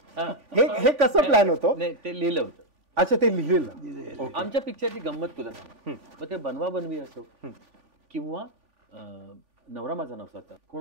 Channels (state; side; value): late; left; 3.5 ms